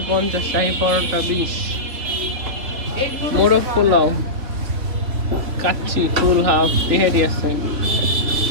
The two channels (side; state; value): left; late; 3.7 ms